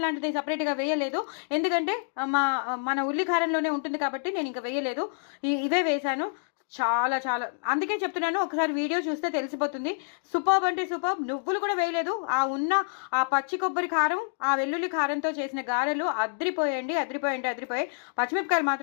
లాంటిది సపరేట్గా వేయలేదు, ఎందుకంటే మన ఉల్లి కారంలోనే ఉంటుంది కాబట్టి నేను ఇంకా వేయలేదు. ఇవే వేశాను. చాలా చాలా, అందుకే చెప్తున్నాను, ఒకసారి వీడియో చూస్తే తెలిసిపోతుంది. సూపర్ అంటే సూపర్. నువ్వులు కూడా వేయలేదు. ఆ పచ్చి కొబ్బరి కారం, ఆ వెల్లుల్లి కారంతో చేసిన గారెలు అదిరిపోయాయి. పచ్చిమిరపకాయలు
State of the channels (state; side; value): silent; right; digital silence